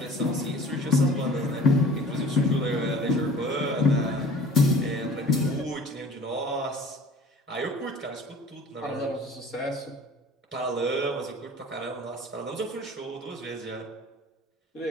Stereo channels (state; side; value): normal; both; correlation 0.45